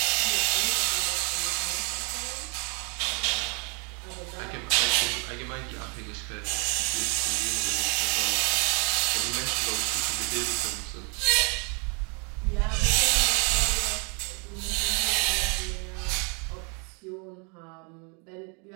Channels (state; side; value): quieter; left; 35.2 dB